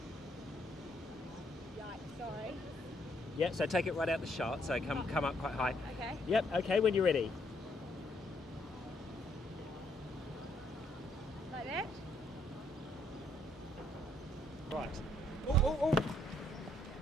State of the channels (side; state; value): both; normal; correlation 0.70